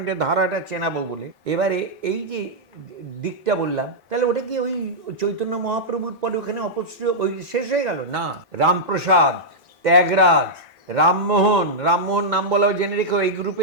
এটা ধারাটা চেনাবো বলে। এবারে এই যে দিকটা বললাম, তাহলে ওটা কি ওই চৈতন্য মহাপ্রভুর পরে ওখানে অপশ্রয় ওই শেষ হয়ে গেল? না, রামপ্রসাদ, ত্যাগরাজ, রামমোহন, রামমোহন নাম বলাও জেনে রেখো এই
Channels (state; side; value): normal; both; correlation -0.08